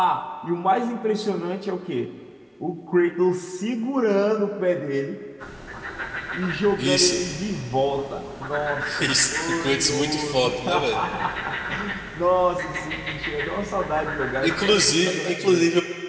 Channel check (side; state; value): both; identical; correlation 1.00